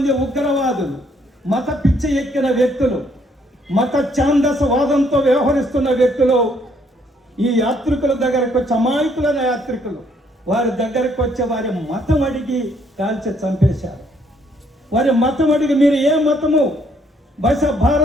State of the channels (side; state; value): both; normal; correlation 0.68